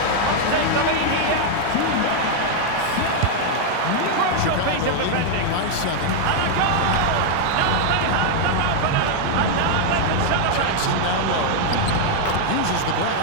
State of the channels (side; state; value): both; different; correlation 0.00